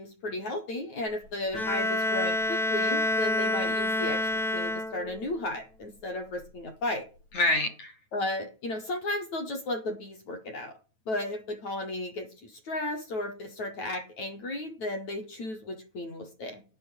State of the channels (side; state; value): right; late; 9.2 ms